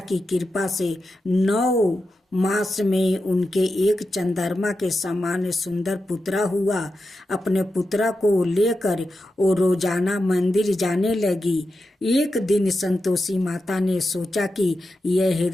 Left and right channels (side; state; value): both; normal; correlation 0.90